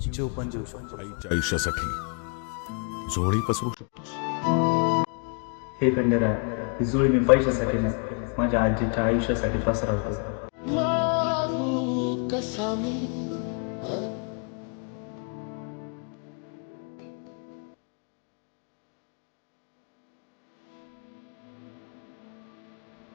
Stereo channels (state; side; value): quieter; right; 39.0 dB